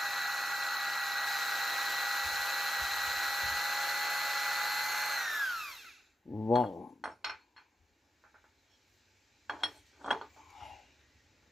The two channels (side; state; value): both; normal; correlation 0.90